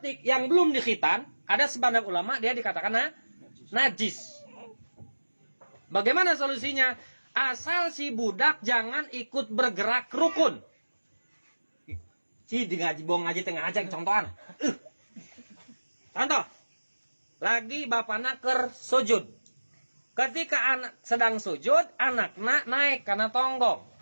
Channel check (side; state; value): both; inverted; correlation -1.00